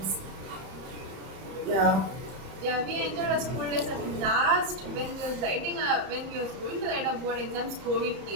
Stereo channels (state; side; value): late; left; 31 ms